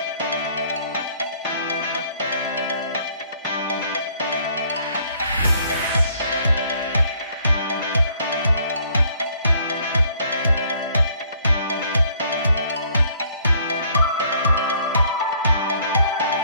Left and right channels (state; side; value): inverted; both; correlation -0.62